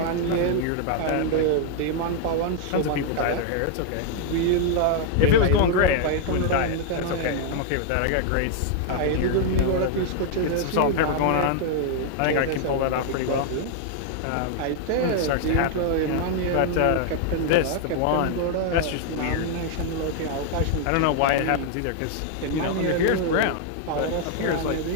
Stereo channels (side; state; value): both; different; correlation 0.00